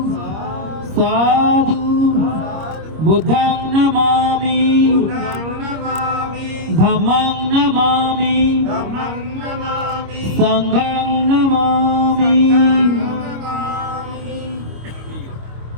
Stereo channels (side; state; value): left; late; 26 ms